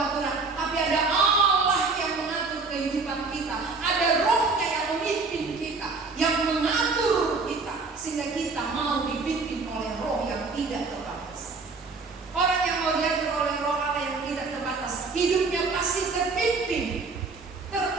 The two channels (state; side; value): quieter; left; 4.2 dB